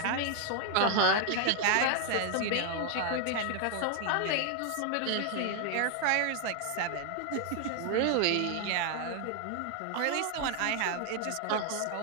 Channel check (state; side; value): different; both; correlation 0.00